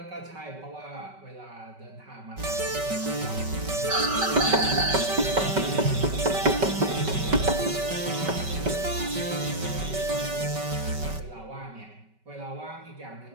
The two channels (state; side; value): late; left; 5.2 ms